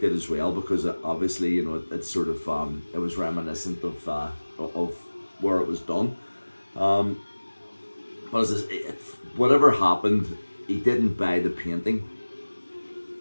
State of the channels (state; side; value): inverted; both; correlation -1.00